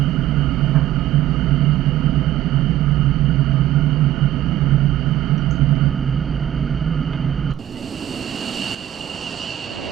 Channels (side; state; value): left; quieter; 12.7 dB